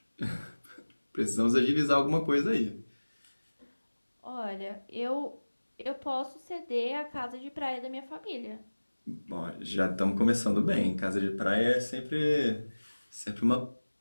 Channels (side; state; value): both; inverted; correlation -1.00